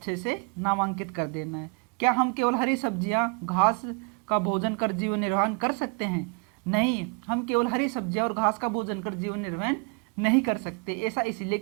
से नामांकित कर देना है। क्या हम केवल हरी सब्जियां, घास का भोजन कर जीवन निर्वाह कर सकते हैं? नहीं, हम केवल हरी सब्जियां और घास का भोजन कर जीवन निर्वाह नहीं कर सकते। ऐसा इसलिए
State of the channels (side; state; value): left; quieter; 33.4 dB